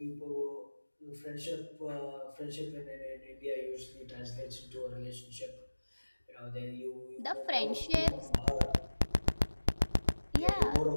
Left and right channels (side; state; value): both; inverted; correlation -1.00